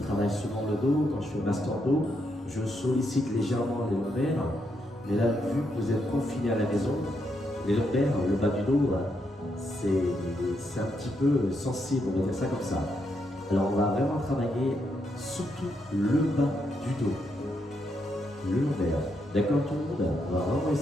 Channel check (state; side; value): normal; both; correlation 0.79